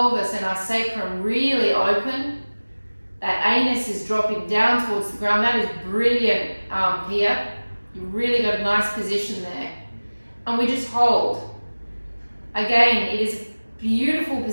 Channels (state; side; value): inverted; both; correlation -1.00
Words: and our sacrum really open. That anus is dropping down towards the ground. That is brilliant, Pia. You've really got a nice position there. And we just hold. Again, it is a beautiful